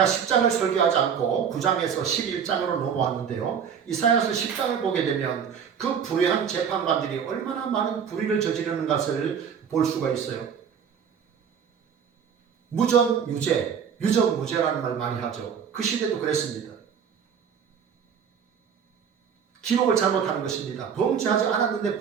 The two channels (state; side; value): quieter; left; 7.4 dB